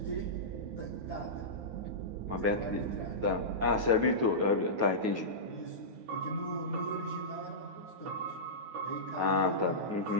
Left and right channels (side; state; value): left; late; 9.4 ms